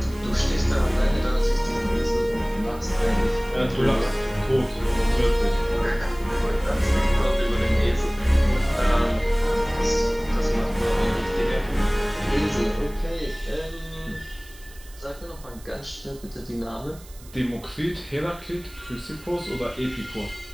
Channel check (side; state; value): right; noise; hiss, 22 dB below the sound